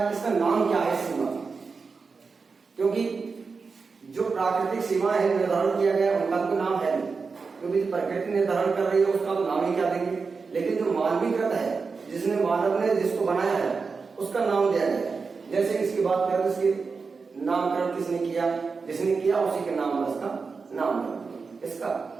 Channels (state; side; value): quieter; left; 4.8 dB